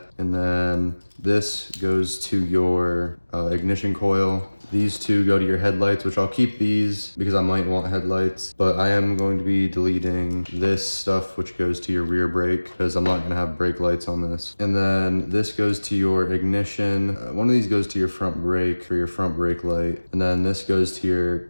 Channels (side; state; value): both; inverted; correlation -1.00